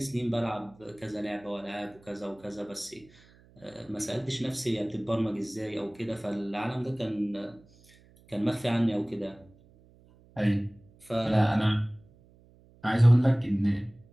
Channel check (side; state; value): right; noise; hum, 27 dB below the sound